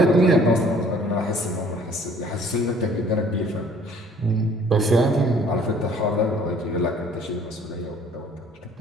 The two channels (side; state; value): both; normal; correlation 0.55